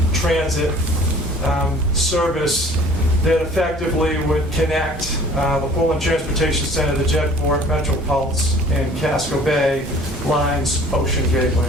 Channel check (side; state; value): both; normal; correlation 0.49